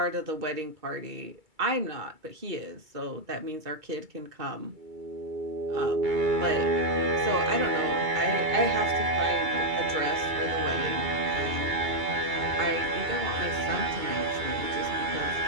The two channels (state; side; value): late; left; 2.3 ms